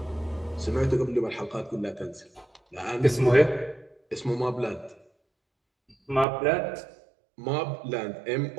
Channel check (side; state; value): left; drops out; at 6.2 s